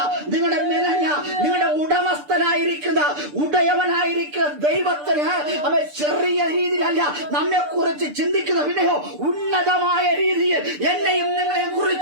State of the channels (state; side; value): late; left; 6.8 ms